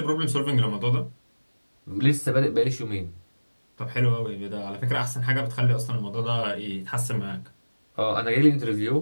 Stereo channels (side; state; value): both; inverted; correlation -1.00